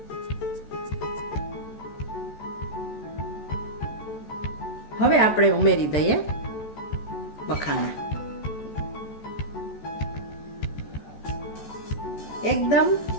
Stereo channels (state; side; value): late; right; 14 ms